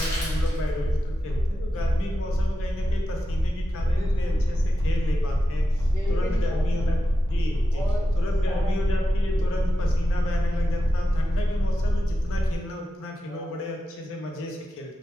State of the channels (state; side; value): normal; both; correlation 0.91